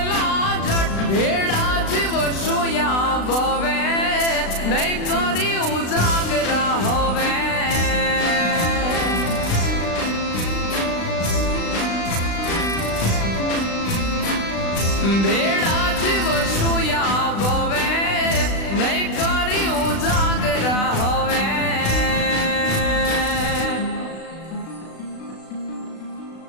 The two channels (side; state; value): right; late; 36 ms